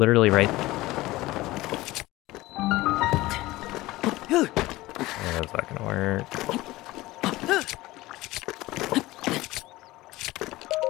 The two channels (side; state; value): right; quieter; 18.6 dB